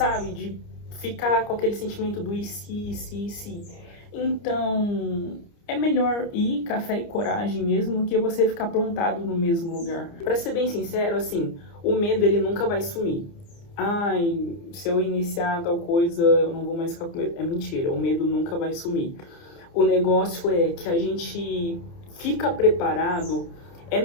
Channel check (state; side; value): late; right; 29 ms